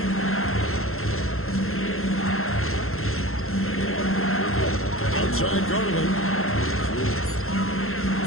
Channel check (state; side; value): late; right; 0.62 ms